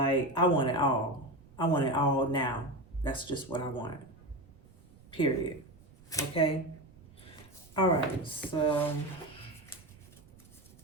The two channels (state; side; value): noise; right; rumble, 24 dB below the sound